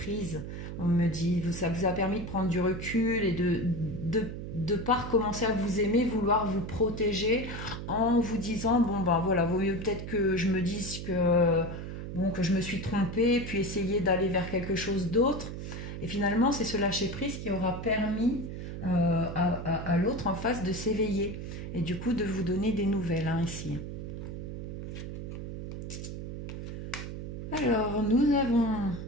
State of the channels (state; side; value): noise; right; hum, 7 dB below the sound